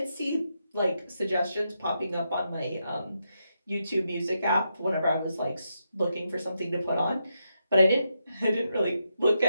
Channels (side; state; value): both; inverted; correlation -0.83